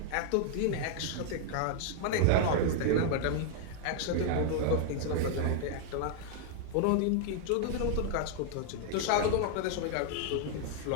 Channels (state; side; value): different; both; correlation 0.00